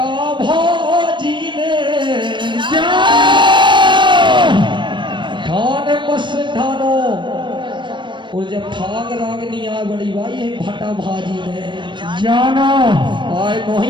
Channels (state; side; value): late; left; 0.23 ms